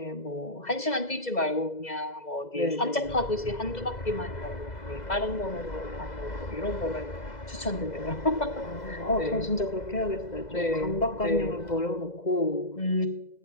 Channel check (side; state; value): right; late; 2.0 ms